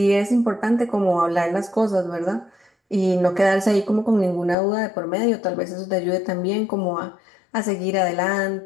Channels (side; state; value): right; drops out; at 4.5 s